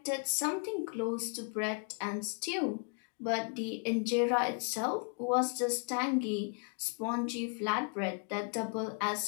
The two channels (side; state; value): right; quieter; 37.7 dB